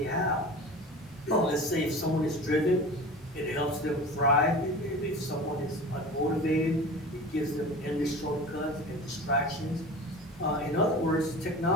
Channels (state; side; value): normal; both; correlation 0.35